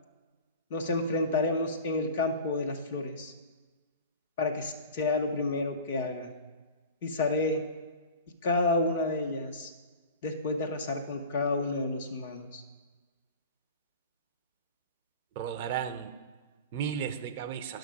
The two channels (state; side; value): inverted; both; correlation -0.35